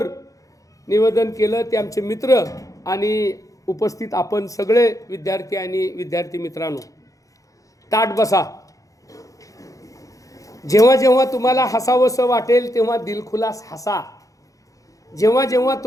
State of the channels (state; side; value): late; right; 0.16 ms